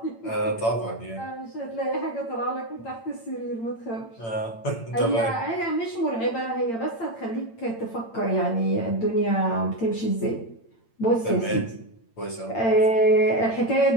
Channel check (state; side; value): late; right; 8.8 ms